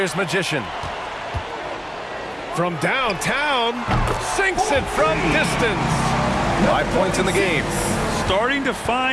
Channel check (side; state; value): both; identical; correlation 1.00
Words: Magician. From downtown, sinks it from distance. 5 points in the game. Starting to